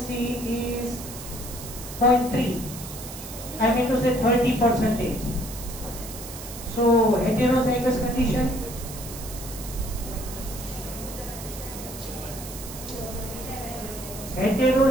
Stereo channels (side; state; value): right; noise; hiss, 12 dB below the sound